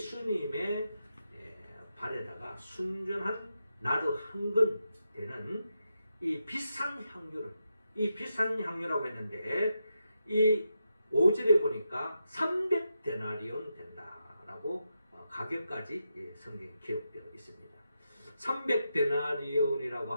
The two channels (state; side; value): inverted; both; correlation -0.86